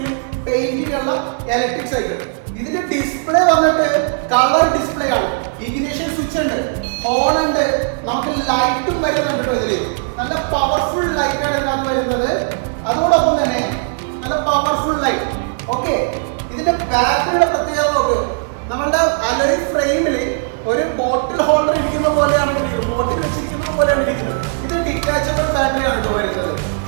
പെയിന്റിംഗ് ഉള്ള ഇലക്ട്രിക് സൈക്കിൾ. ഇതിന്റെ ഡിസ്പ്ലേ വന്നിട്ട് കളർ ഡിസ്പ്ലേ ആണ്. ഇഗ്നിഷൻ സ്വിച്ച് ഉണ്ട്, ഹോൺ ഉണ്ട്, നമുക്ക് ലൈറ്റും വരുന്നുണ്ട്. ഇതില് നല്ല പവർഫുൾ ലൈറ്റ് ആണ് ഇതിനകത്ത് വരുന്നത്. അതോടൊപ്പം തന്നെ നല്ല പവർഫുൾ ലൈറ്റ്. ഓക്കെ, ഇതിന്റെ ബാറ്ററിയുടെ പ്രത്യേകത നോക്ക്. നമ്മളുടെ അലോയ് ഫ്രെയിമിൽ ഒരു ബോട്ടിൽ ഹോൾഡർ ഇരിക്കുന്ന പോലെയാണ് ഇരിക്കുന്നത്, ബോട്ടിൽ വെച്ചിരിക്കുന്നത് പോലെയാണ് ഇരിക്കുന്നത്. ഇത് ഡിറ്റാച്ചബിൾ ബാറ്ററിയാണ് കേട്ടോ വരുന്നത്.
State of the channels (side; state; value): left; silent; 68 dB below the other